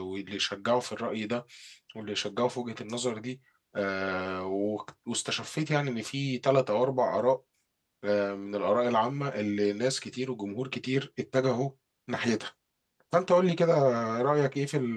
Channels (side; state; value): both; identical; correlation 1.00